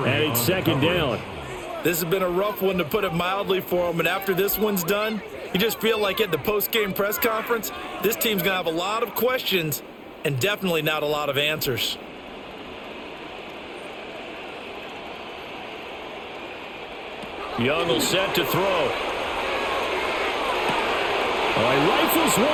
it's second down. This has been a rough one, to put it mildly, for him. And after this one's done, you just feel like at the post-game press conference, this team's going to have a lot of questions and definitely not a lot of answers. Young will set to throw. Oh, he rifles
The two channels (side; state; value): both; identical; correlation 1.00